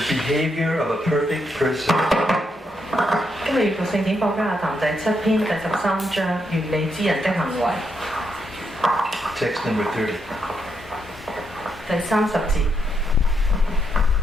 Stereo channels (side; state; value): both; normal; correlation 0.80